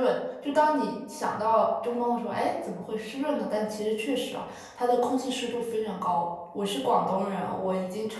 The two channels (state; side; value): identical; both; correlation 1.00